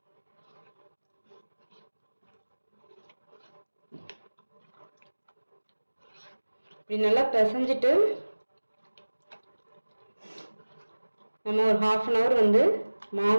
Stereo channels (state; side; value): inverted; both; correlation -1.00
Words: இப்படி நல்லா பிசைஞ்சிட்டு நம்ம ஒரு 1/2 an hour